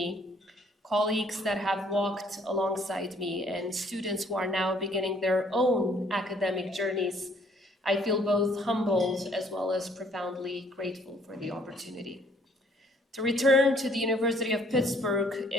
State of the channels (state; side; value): normal; both; correlation 0.62